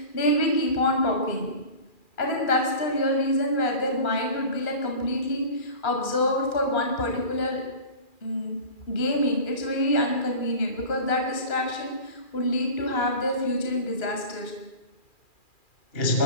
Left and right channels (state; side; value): late; right; 2.4 ms